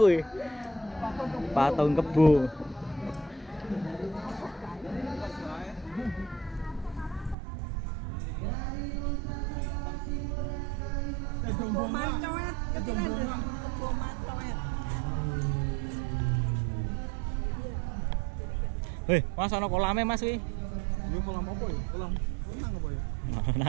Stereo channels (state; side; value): drops out; left; at 7.4 s